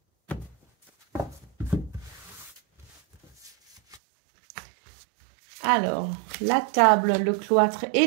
Alors, la table, le cloître et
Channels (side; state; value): left; drops out; at 4.0 s